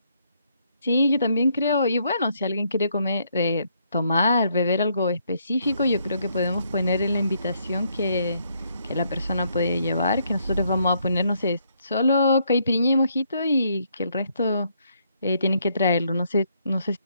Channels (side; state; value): both; inverted; correlation -0.72